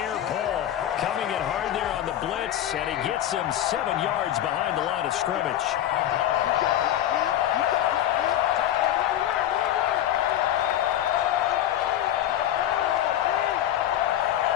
coming in hard there on the blitz, and he gets him 7 yards behind the line of scrimmage.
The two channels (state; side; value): quieter; right; 11.9 dB